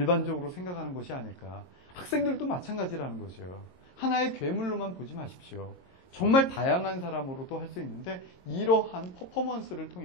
생각하는 것이 아닐까. 학생들도 마찬가지라는 거죠. 하나의 괴물로만 보지 마십시오. 정말 다양한 사람으로도 할 수 있는데 이러한 퍼포먼스를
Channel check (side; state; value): right; late; 22 ms